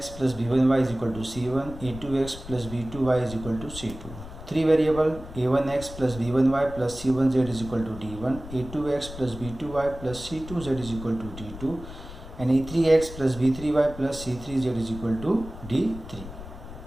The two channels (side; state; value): left; noise; rumble, 13 dB below the sound